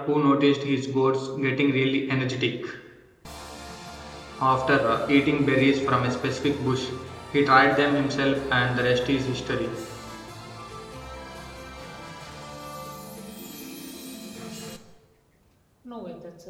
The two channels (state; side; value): identical; both; correlation 1.00